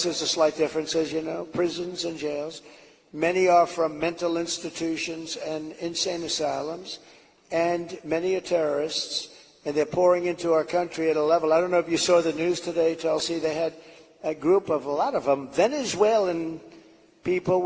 There's a slight difference, as you know, prisons and jails. Many are from mental institutions and insane asylums. And many are terrorists. And they're pouring into our country at a level. I don't know if you saw the news today, Tulsi. They had a group of, a lot of them, Venezuelan people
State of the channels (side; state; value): both; identical; correlation 1.00